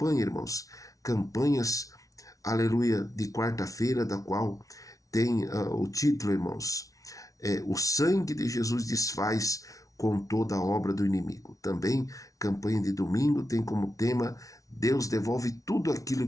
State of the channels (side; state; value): right; late; 0.17 ms